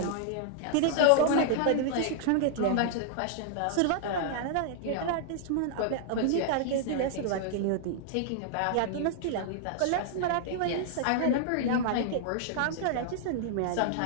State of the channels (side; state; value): both; different; correlation -0.01